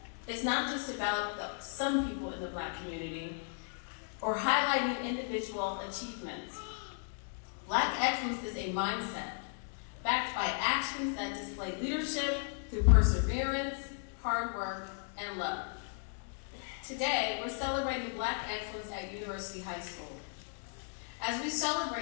is not just about some people in the Black community or highlighting individual achievements. Black excellence is a mindset backed by actions that display leadership through perseverance, hard work, and love. Today, we're celebrating Black excellence at University High School. As we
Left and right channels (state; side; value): silent; right; 54 dB below the other